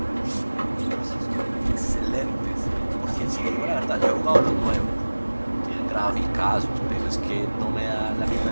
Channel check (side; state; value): both; inverted; correlation -1.00